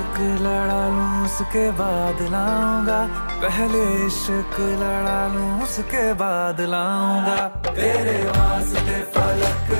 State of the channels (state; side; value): inverted; both; correlation -1.00